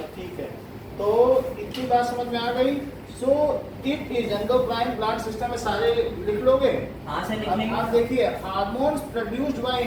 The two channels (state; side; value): identical; both; correlation 1.00